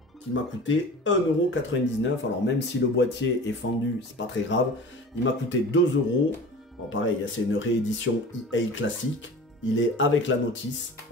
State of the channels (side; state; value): both; normal; correlation 0.38